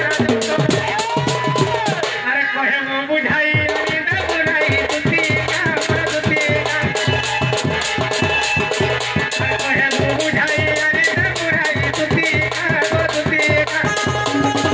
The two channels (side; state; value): both; identical; correlation 1.00